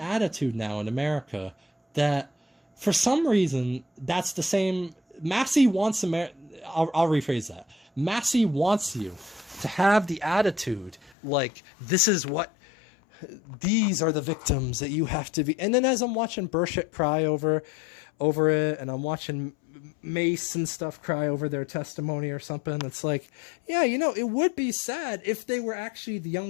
now in America that, for some reason, that's the same. Massie wants I'll rephrase that. Massie wants you to have the attitude like, these are the victims that you have to be. And then as I'm watching Burchett cry over it, and I'm watching Mace and stuff cry over their testimony or something, it's like, yeah, it would be sad if they were actually the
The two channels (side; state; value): right; drops out; at 11.2 s